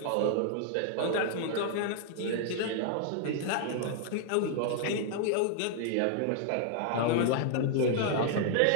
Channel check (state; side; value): different; both; correlation 0.00